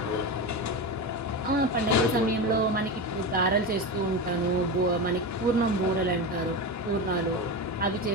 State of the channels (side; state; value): both; normal; correlation 0.21